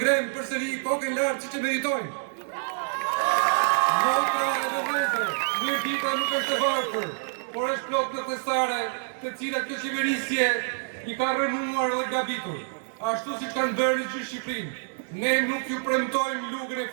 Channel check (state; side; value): silent; left; 60 dB below the other